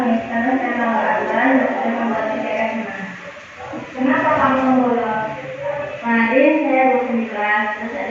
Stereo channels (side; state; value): both; identical; correlation 1.00